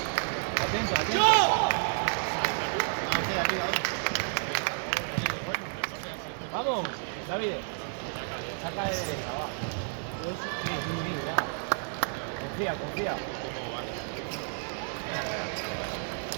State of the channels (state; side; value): silent; left; 57 dB below the other